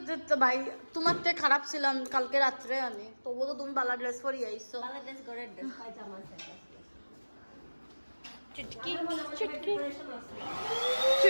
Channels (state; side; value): inverted; both; correlation -1.00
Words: ভাই তোমার থেকে খারাপ ছিলাম কালকে রাত্রে আমি তবুও তো তুমি বালা ড্রেস পরি আইছো বাংলাদেশ গড়ের ড্রেস পায়জামা আছে চুটকি চুটকি